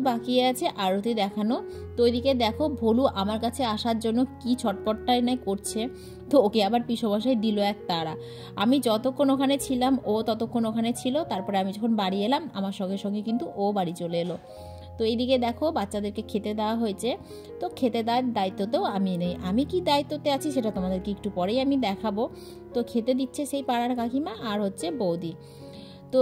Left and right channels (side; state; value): both; identical; correlation 1.00